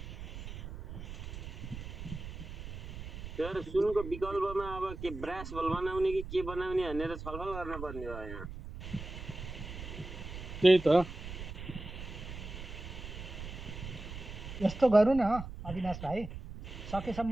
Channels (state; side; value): noise; right; rumble, 9 dB below the sound